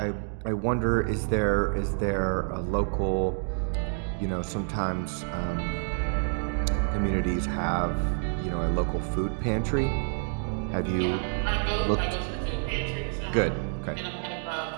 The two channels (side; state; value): left; silent; 59 dB below the other